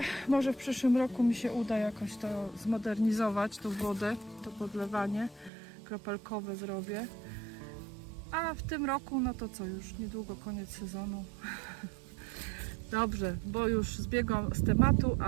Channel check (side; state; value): left; drops out; at 5.5 s